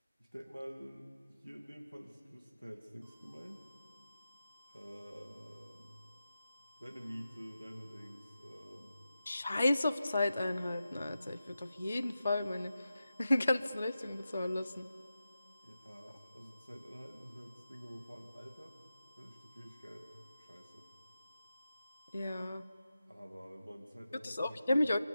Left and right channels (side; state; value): both; inverted; correlation -0.92